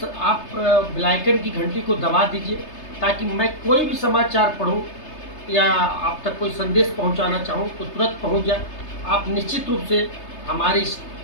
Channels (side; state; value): right; late; 3.3 ms